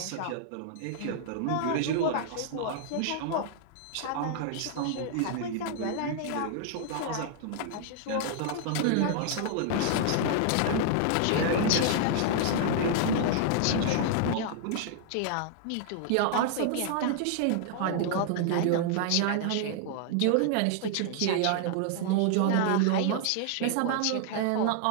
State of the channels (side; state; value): both; different; correlation -0.01